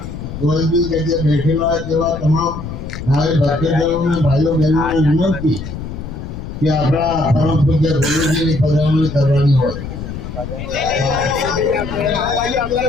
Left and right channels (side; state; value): left; noise; rumble, 8 dB below the sound